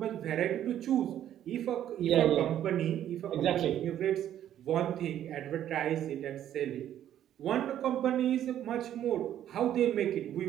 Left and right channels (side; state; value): left; quieter; 11.1 dB